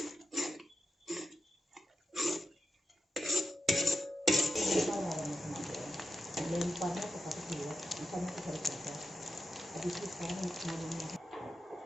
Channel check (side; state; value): both; normal; correlation 0.87